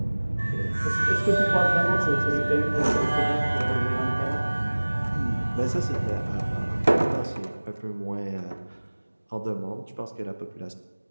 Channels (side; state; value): both; inverted; correlation -1.00